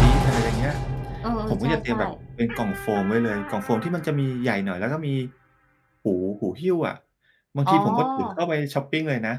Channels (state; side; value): identical; both; correlation 1.00